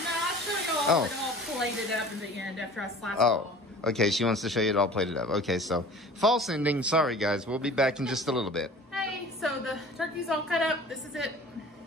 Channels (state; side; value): normal; both; correlation 0.44